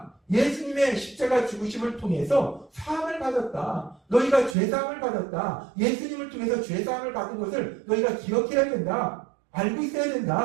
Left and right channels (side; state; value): left; drops out; at 4.5 s